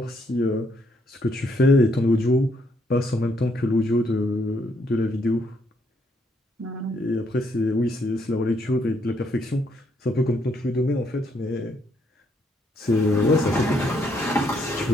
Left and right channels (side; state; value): both; normal; correlation 0.73